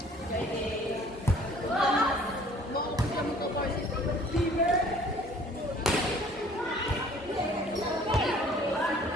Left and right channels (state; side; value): normal; both; correlation 0.54